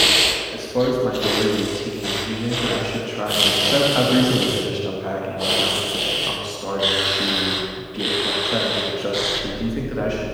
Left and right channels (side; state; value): both; identical; correlation 1.00